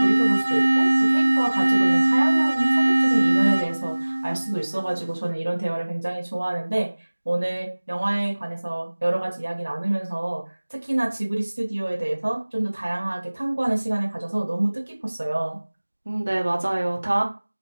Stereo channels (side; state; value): both; inverted; correlation -1.00